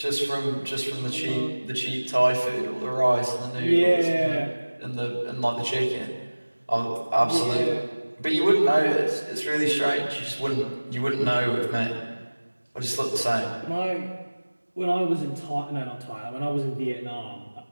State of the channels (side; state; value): both; inverted; correlation -1.00